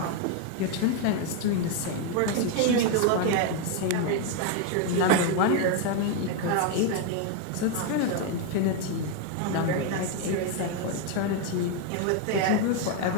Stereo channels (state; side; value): different; both; correlation 0.01